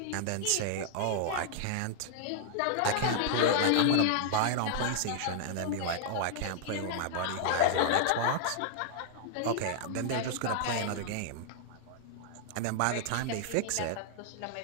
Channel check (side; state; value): both; different; correlation 0.00